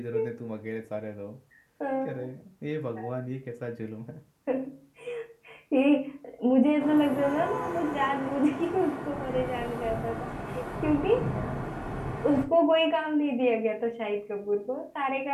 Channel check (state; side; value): identical; both; correlation 1.00